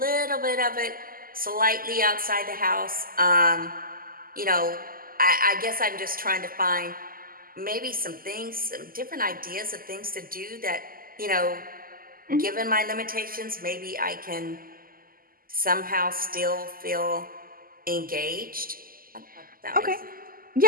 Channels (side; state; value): left; late; 0.42 ms